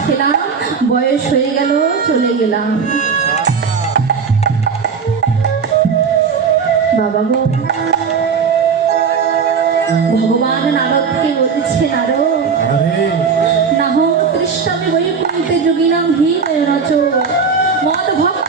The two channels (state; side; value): quieter; left; 5.8 dB